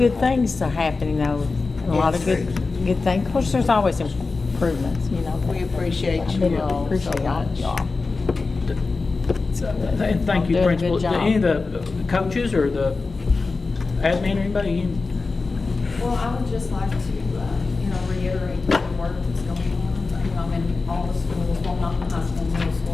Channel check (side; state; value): right; quieter; 4.0 dB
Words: things are happening though. A lot of good things. Of course, there's always improvements, We appreciate you all so much. And thank you, Doing a Principal. good job. Any of the coaches or the admin or anybody? Well, I would just like to, reiterate the work that's going on. I'm in all the schools, well, not the high school, middle